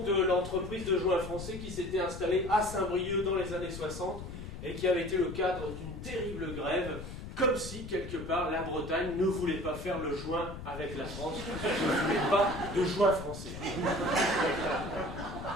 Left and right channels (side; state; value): left; noise; rumble, 10 dB below the sound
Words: de l'entreprise de joint français qui s'était installée à Saint-Brieuc dans les années 60 et qui avait été le cadre d'une terrible grève, comme si, quelque part, la Bretagne ne voulait pas faire le joint avec la France, ne voulait pas de joint français.